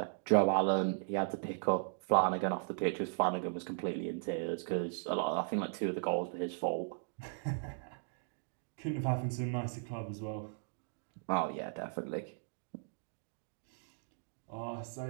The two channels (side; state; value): left; silent; digital silence